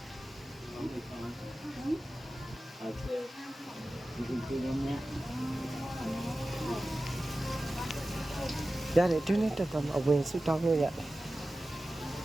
ရတယ်တွင်းနဲ့တက်တော့အဝင်စုတောင်းလို့ရတယ်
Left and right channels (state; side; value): normal; both; correlation 0.95